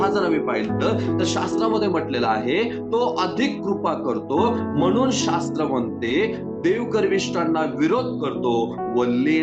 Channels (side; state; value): both; identical; correlation 1.00